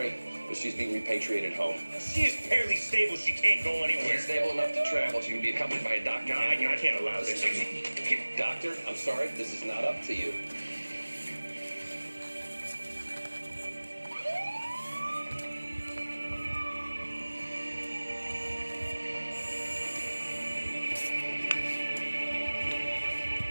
but she's being repatriated home. She is barely stable. She can't go anywhere. She's stable enough to travel. She can be accompanied by a doctor. No, I can't allow this. Doctor, I'm sorry. This is not up to you.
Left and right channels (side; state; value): both; inverted; correlation -1.00